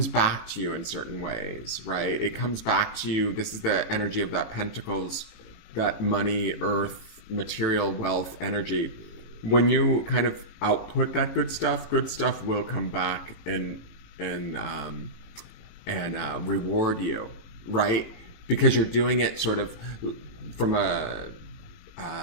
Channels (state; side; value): late; right; 18 ms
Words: back to you in certain ways, right? It comes back to you. This is the energy of that Pentacles, that money, earth, material, wealth energy. When you kind of output that good stuff will come back and reward you, right? Because you're doing it sort of from a